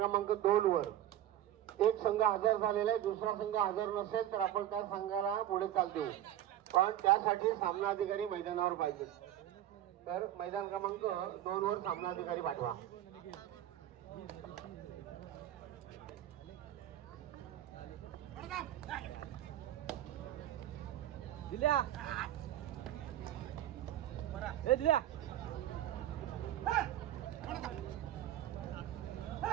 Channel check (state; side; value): quieter; left; 12.2 dB